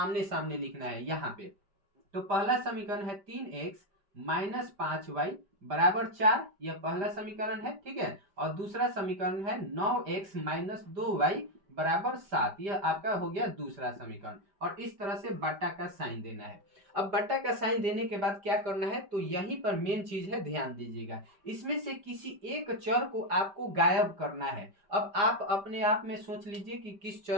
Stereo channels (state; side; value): late; left; 5.1 ms